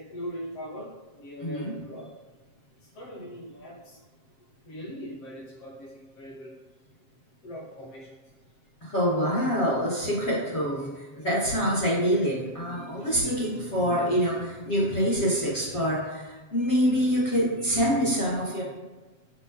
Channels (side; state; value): right; late; 7.5 ms